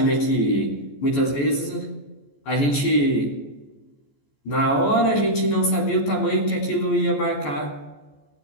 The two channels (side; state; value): right; late; 14 ms